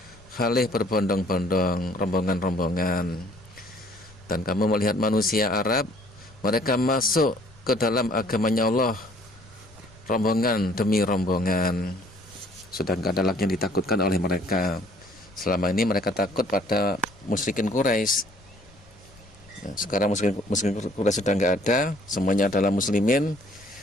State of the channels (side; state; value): left; noise; rumble, 26 dB below the sound